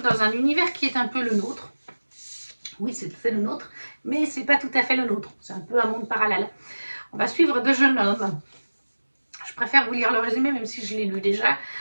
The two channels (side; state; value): both; inverted; correlation -1.00